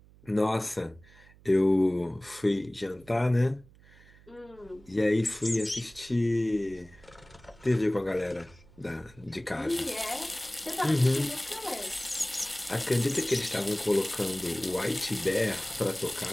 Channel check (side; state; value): right; noise; hum, 25 dB below the sound